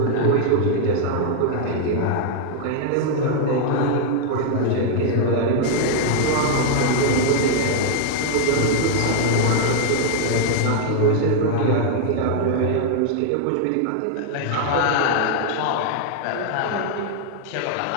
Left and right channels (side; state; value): both; different; correlation 0.00